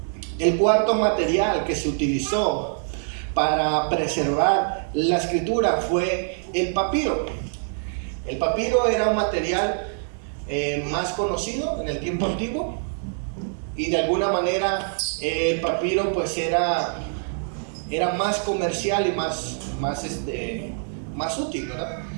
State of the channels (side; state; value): left; silent; digital silence